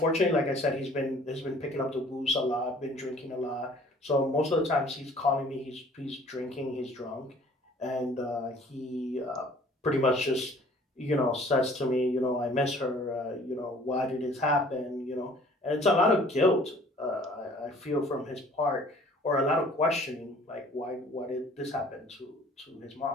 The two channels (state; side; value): normal; both; correlation 0.53